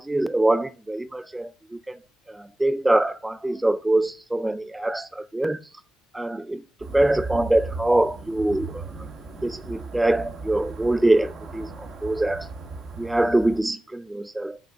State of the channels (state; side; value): normal; both; correlation 0.98